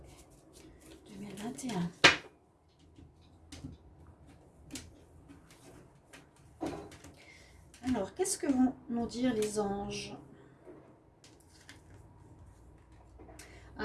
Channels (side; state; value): both; identical; correlation 1.00